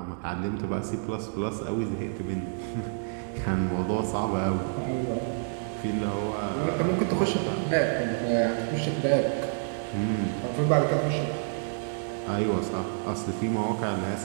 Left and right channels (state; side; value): silent; left; digital silence